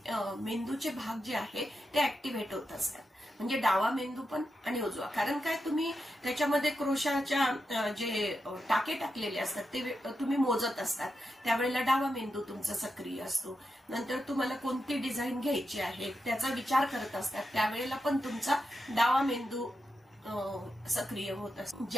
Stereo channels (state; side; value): normal; both; correlation 0.88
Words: मेंदूचे भाग जे आहे ते ऍक्टिव्हेट होत असतात. म्हणजे डावा मेंदू पण आणि उजवा. कारण काय, तुम्ही त्याच्यामध्ये क्रोशाच्या जे टाके टाकलेले असतात ते तुम्ही मोजत असतात. त्यावेळेला डावा मेंदू तुमचा सक्रिय असतो. नंतर तुम्हाला कोणती डिझाईन घ्यायची आहे त्याचा विचार करत असतात, त्यावेळेला पण तुमचा डावा मेंदू सक्रिय होत असतो.